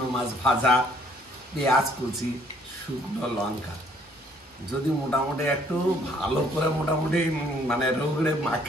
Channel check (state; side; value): normal; both; correlation 0.62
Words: মাছ ভাজা, পেঁয়াজ কুচি, শুকনো লঙ্কা। যদি মোটামুটি একটু ভালো করে মোটামুটি মানে রোগড়ে